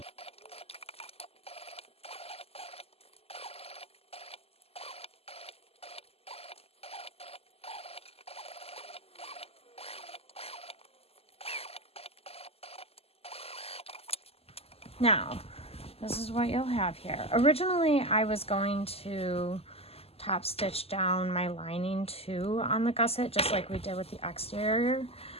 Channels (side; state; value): right; late; 0.29 ms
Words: Now, this is what you'll have here. Originally, I was going to top stitch down my lining too on the gusset, just like we did with the exterior.